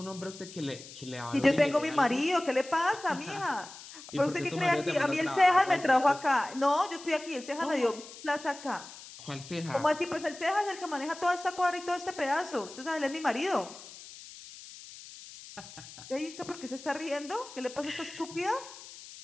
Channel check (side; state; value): left; noise; hiss, 16 dB below the sound